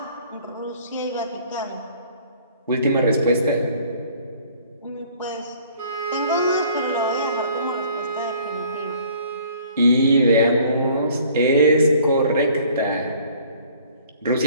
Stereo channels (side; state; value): both; inverted; correlation -0.55